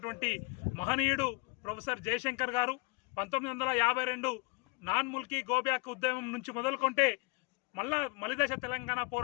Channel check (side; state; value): right; quieter; 27.9 dB